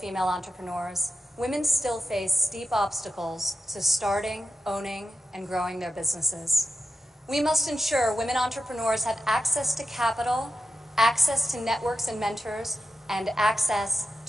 entrepreneurs, women still face steep obstacles to starting, owning, and growing their businesses. We must ensure women entrepreneurs have access to capital, access to networks and mentors, and access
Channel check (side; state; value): both; normal; correlation 0.91